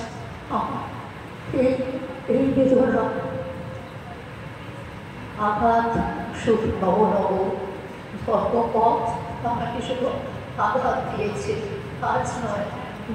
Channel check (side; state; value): both; identical; correlation 1.00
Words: আমার এই বেদনা আঘাত শুধু নব নব ধর্মপথ আমাকে শুধু আঘাত দিয়েছে। আজ নয়,